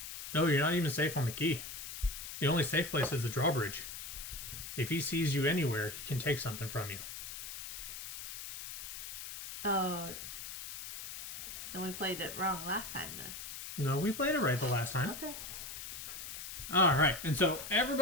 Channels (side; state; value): left; noise; hiss, 9 dB below the sound